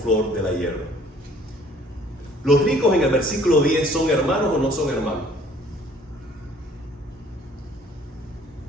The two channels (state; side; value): normal; both; correlation 0.56